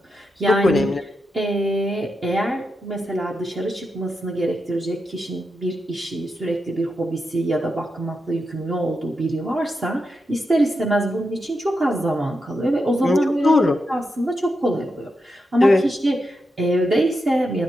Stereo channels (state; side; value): normal; both; correlation 0.86